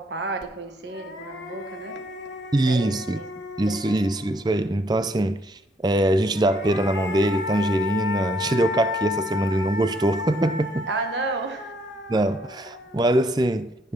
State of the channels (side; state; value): both; normal; correlation 0.68